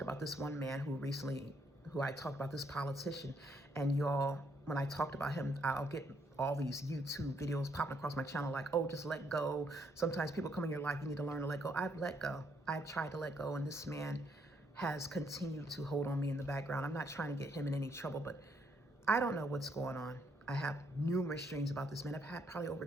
about this one man who I talked about, this politician, and y'all, when I talked about him, I'll get all these YouTube videos popping across my channel like, oh, just let go. Sometimes people come in your life, you need to learn to let go. I've let go. I've tried to let go, and this man has continued to hold on me in the background. I'm not trying to get him in any trouble, but I don't know what's going on. I have numerous dreams about this man. I've had probably over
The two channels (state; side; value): normal; both; correlation 0.72